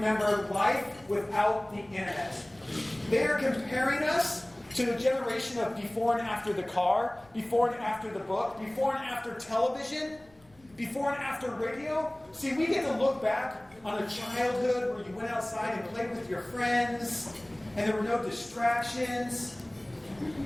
life without the internet. They are comparing us to a generation of before and after the car, before and after the book, before and after television, before and after radio. See, we get to look back on a childhood where you went outside and played with your friends, and there were no distractions.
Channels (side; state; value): left; noise; rumble, 29 dB below the sound